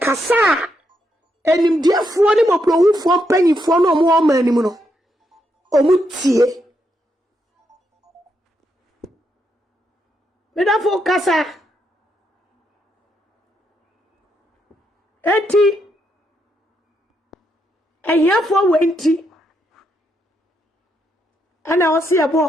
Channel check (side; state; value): both; normal; correlation 0.79